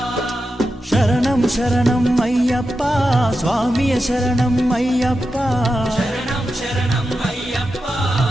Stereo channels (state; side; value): normal; both; correlation 0.90